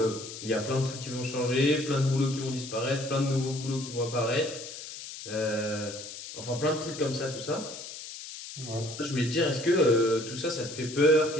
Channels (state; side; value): noise; left; hiss, 11 dB below the sound